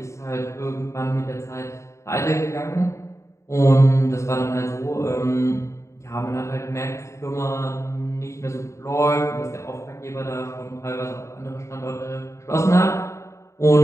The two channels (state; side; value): late; right; 0.14 ms